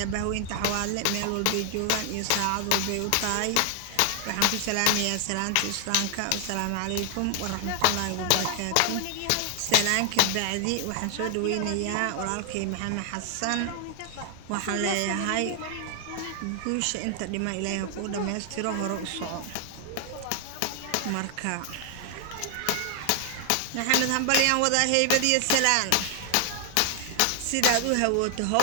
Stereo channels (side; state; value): both; different; correlation 0.00